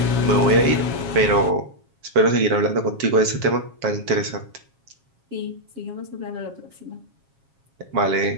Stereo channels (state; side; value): late; left; 7.3 ms